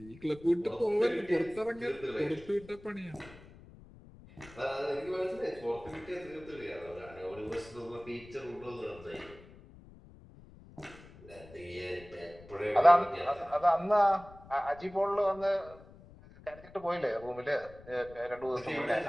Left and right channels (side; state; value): left; noise; rumble, 20 dB below the sound